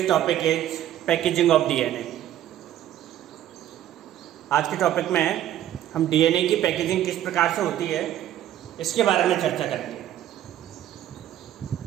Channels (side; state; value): left; quieter; 12.0 dB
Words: topic is packaging of DNA. आज के टॉपिक में हम DNA की पैकेजिंग किस प्रकार से होती है इसके बारे में चर्चा करेंगे।